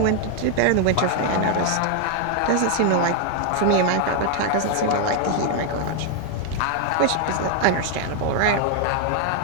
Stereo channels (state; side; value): different; both; correlation 0.01